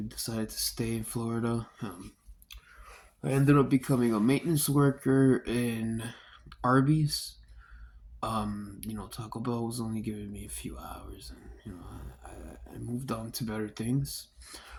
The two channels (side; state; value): both; identical; correlation 1.00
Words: decided to stay in Florida. I ended up becoming a maintenance worker in Arby's. Taco Bell was only giving me a few hours, and I moved on to better things.